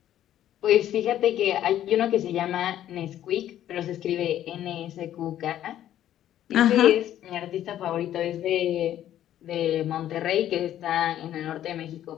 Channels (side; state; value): right; quieter; 11.8 dB